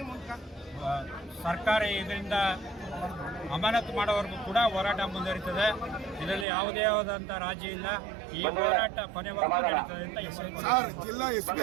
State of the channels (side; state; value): left; drops out; at 6.5 s